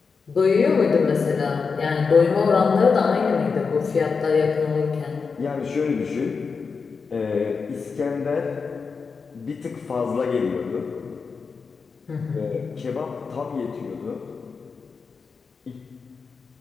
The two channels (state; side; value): quieter; right; 5.1 dB